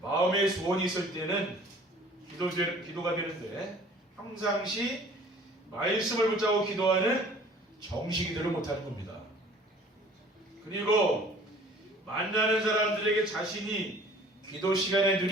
마음의 소원이 있을 때는 기도가 되는데 평상시 말씀을 붙잡고 기도하는 정시기도를 못하는 겁니다. 그리고 만나는 사람들에게 자신이 기도 시간에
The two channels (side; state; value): both; normal; correlation 0.50